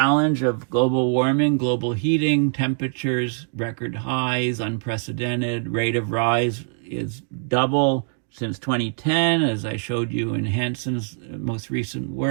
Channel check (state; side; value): silent; left; digital silence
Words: of global warming, global heating, temperatures, record highs, unprecedented, rate of rise is double since 2010, as I showed you in Hanson's most recent